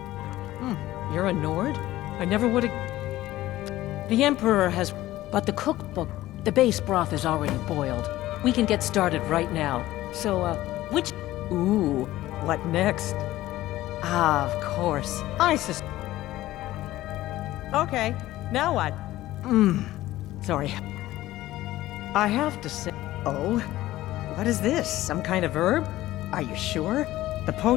you're a Nord? I never would've... The Emperor has... But the cookbook... The base broth is already boiled. We can get started right now. So, which... Ooh, what next? Ah, of course. Okay, now what? Sorry. I have to say... Oh? What is this? Some kind of herb? Are you sure? The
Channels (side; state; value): right; quieter; 15.8 dB